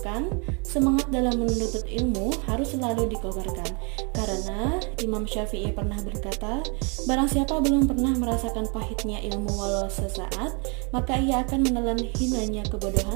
Semangat dalam menuntut ilmu harus selalu dikobarkan. Karena Imam Syafi'i pernah berkata, barang siapa belum pernah merasakan pahitnya ilmu walau sesaat, maka ia akan menelan hinanya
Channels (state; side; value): quieter; left; 33.4 dB